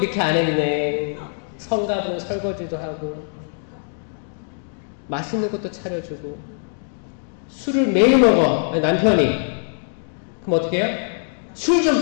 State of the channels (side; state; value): right; silent; digital silence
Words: 안 했네, 성가도 설거지도 하고 맛있는 것도 차려주고. 술을 매일 먹어 남편이. 그럼 어떻게 해요? 술